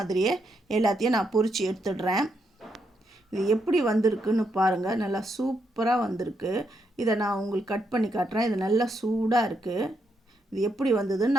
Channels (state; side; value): normal; both; correlation 0.79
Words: எல்லாத்தையும் நான் பொரித்து எடுத்துடுறேன். இது எப்படி வந்திருக்குன்னு பாருங்கள். நல்லா சூப்பராக வந்திருக்கு. இதை நான் உங்களுக்கு கட் பண்ணி காட்டுறேன். இது நல்லா சூடாக இருக்குது. இது எப்படி வந்ததுன்னு